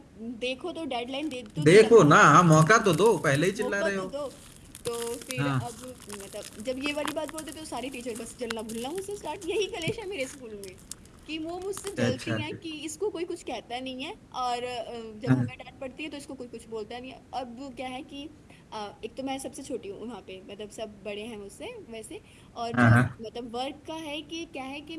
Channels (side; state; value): both; identical; correlation 1.00